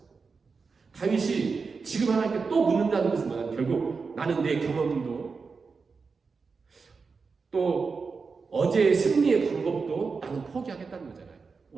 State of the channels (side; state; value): left; quieter; 4.8 dB